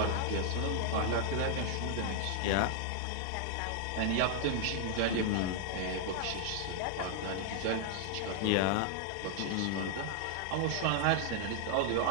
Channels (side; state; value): both; different; correlation 0.00